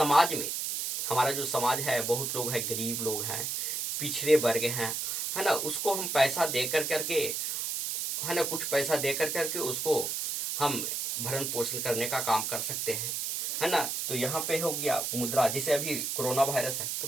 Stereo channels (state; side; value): noise; right; hiss, 2 dB below the sound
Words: में, हमारा जो समाज है, बहुत लोग हैं, गरीब लोग हैं, पिछड़े वर्ग हैं, है ना, उसको हम पैसा दे करके, है ना, कुछ पैसा दे करके उसको हम भरण पोषण करने का काम कर सकते हैं, है ना। तो यहाँ पे हो गया मुद्रा। जैसे अभी कोरोना वायरस है, तो